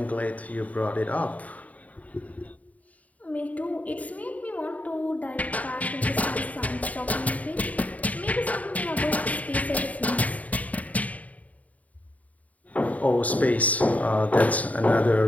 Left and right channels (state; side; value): late; right; 0.071 ms